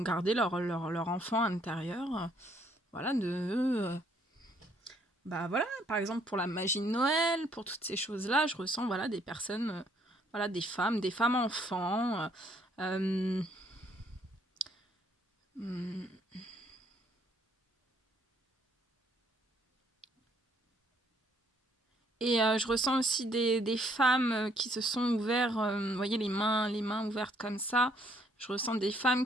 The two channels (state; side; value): normal; both; correlation 0.66